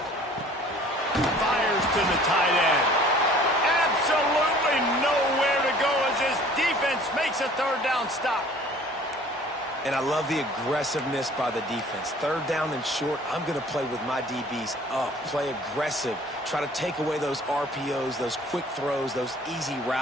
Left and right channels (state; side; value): normal; both; correlation 0.51